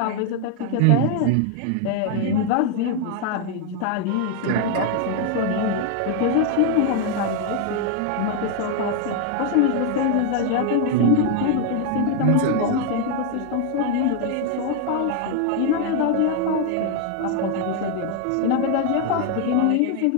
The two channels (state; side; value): different; both; correlation 0.01